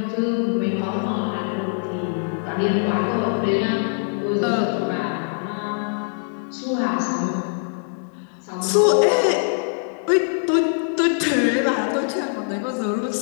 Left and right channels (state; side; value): silent; right; digital silence